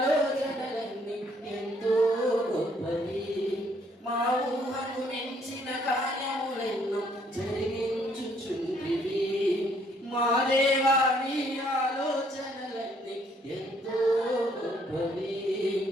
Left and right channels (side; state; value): both; normal; correlation 0.66